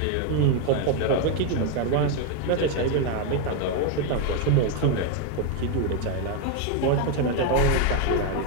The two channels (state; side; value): different; both; correlation 0.01